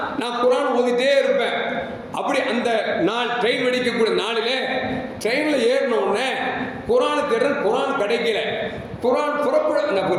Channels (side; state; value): both; identical; correlation 1.00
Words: நான் குர்ஆன் ஓதிட்டே இருப்பேன். அப்படி அந்த நாள் ட்ரெயின் வெடிக்கக்கூடிய நாளிலே ட்ரெயினில் ஏறினோடனே குர்ஆனை தேடுறேன், குர்ஆன் கிடைக்கல.